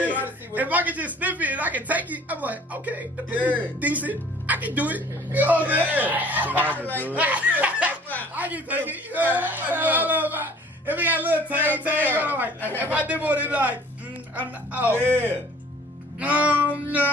can just sniff it and I can take it, I'm like, okay, the pussy Yeah. decent. I can do it. You know what I'm saying? I can take it. You know, if it got a little tang, I'm like, if I dip on it, like,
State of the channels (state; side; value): normal; both; correlation 0.51